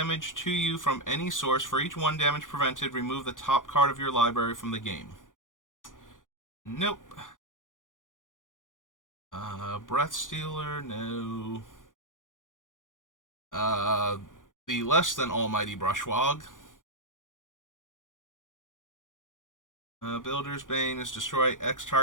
to you from any source. For each 1 damage prevented, remove the top card of your library from the game. Nope. Breath Stealer, no. The less than almighty Brushwog. Builder's Bane is destroy X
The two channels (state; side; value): late; right; 0.88 ms